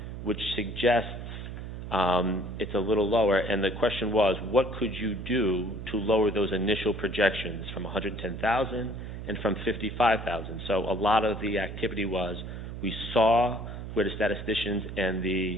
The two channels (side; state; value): right; noise; hum, 8 dB below the sound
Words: which suggests it's a little lower. And the question was, what could you do to lower those initial projections from 110,000 and from 55,000? So a lot of the activity was, We saw where the statisticians and the